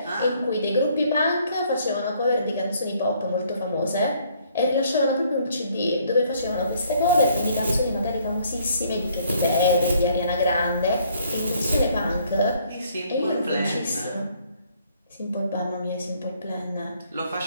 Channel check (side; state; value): both; inverted; correlation -0.64